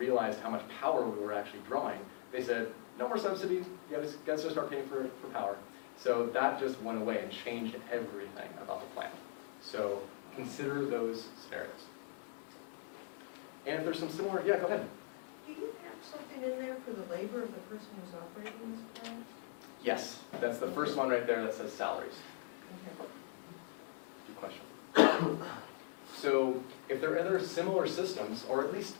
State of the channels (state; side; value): silent; right; digital silence